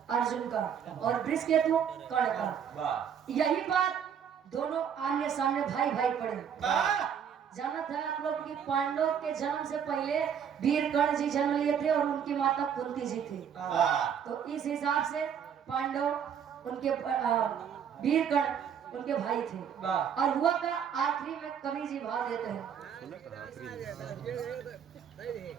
अर्जुन का, और वृषकेतु कर्ण का। यही बात दोनों आमने सामने भाई भाई पड़े। जाना था आप लोग कि पांडव के जन्म से पहले वीर कर्ण जी जन्म लिए थे और उनकी माता कुंती जी थी। तो इस हिसाब से पांडव उनके वीर कर्ण उनके भाई थे। और हुआ का आखिरी में कवि जी भाव देते हैं।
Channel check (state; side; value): quieter; left; 8.1 dB